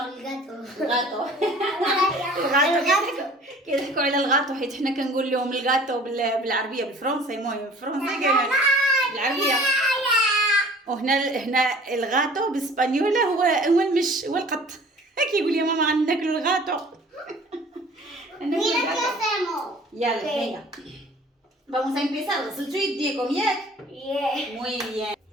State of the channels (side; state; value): both; normal; correlation 0.49